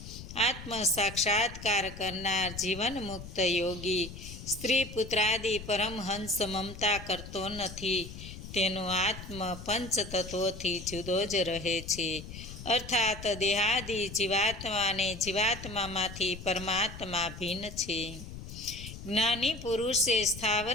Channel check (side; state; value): left; noise; rumble, 12 dB below the sound